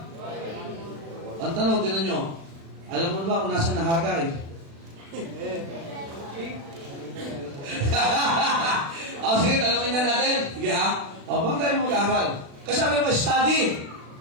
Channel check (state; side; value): late; left; 36 ms